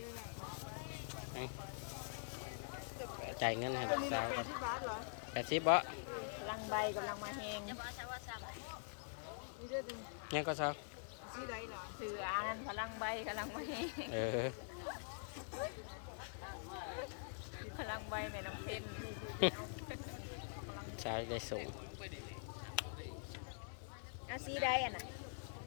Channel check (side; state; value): right; silent; digital silence